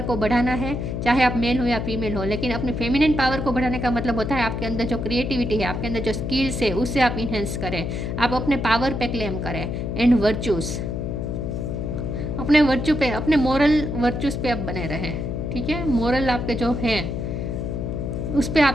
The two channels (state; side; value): noise; left; hum, 3 dB below the sound